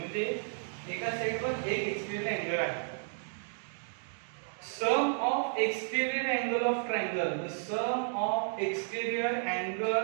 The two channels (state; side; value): silent; left; digital silence